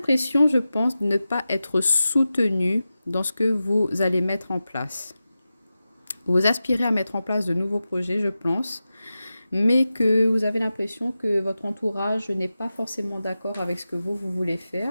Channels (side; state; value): both; inverted; correlation -0.93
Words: je pense, de ne pas être soutenu dans ce que vous allez mettre en place. Vous aspirez à mettre en place de nouveaux projets, je pense, mais que vous avez l'impression que votre entourage n'est pas forcément d'accord avec ce que vous voulez